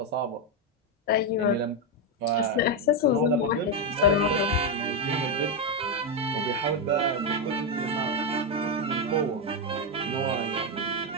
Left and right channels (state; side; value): normal; both; correlation 0.05